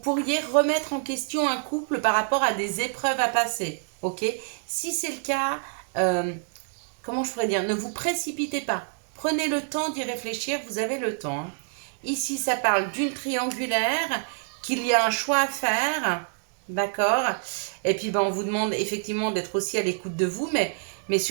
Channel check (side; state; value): left; silent; 60 dB below the other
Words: remettre en question un couple par rapport à des épreuves à passer, ok? Si c'est le cas, comment je pourrais dire? Ne vous précipitez pas. Prenez le temps d'y réfléchir, vous avez le temps, hein. Ici, ça parle d'une triangulaire, qu'il y a un choix à faire, d'accord? Et puis, on vous demande effectivement d'être aussi à l'écoute de vous, mais